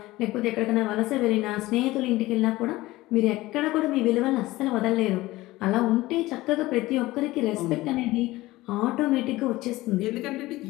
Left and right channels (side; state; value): right; quieter; 18.5 dB